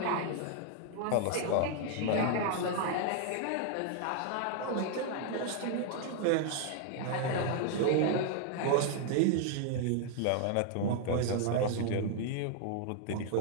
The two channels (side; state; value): both; different; correlation 0.00